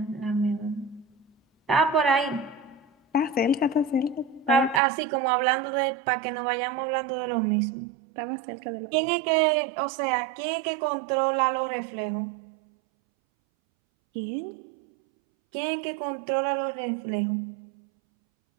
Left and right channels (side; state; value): left; drops out; at 4.8 s